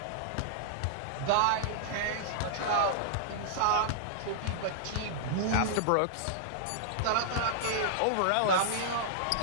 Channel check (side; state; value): both; different; correlation -0.01